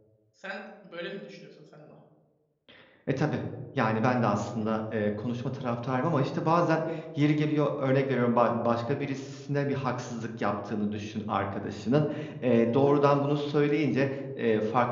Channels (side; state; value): both; identical; correlation 1.00